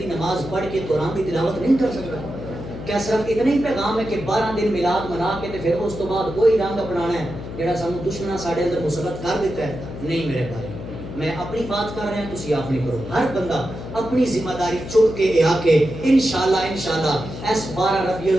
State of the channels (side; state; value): left; noise; hum, 10 dB below the sound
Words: نماز پڑھ کے قرآن کی تلاوت نہیں کر سکتا کیا صرف اتنا ہی پیغام ہے کہ 12 دن میلاد منا کے پھر اس تو بعد وہی رنگ اپنانا ہے جہاں سانو دشمناں ساڈے اندر مسلط کر دیتا ہے نہیں میرے بھائی میں اپنی بات کر رہا ہوں تسی آپ نہیں کرو ہر بندہ اپنی ذمہ داری چک کے آ کے انشاءاللہ اس 12 ربیع